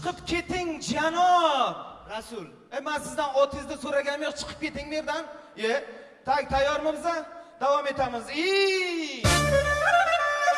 keting janob Rasul. Men sizdan otingizni so'raganim yo'q, chiqib keting bu yerdan. Tayyormisiz? Davom etamiz.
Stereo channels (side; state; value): both; identical; correlation 1.00